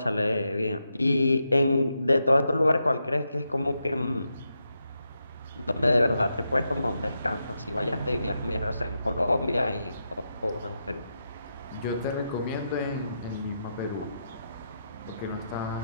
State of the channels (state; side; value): inverted; both; correlation -0.85